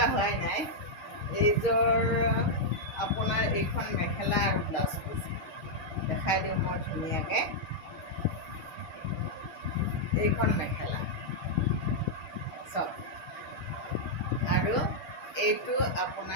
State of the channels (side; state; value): right; late; 6.4 ms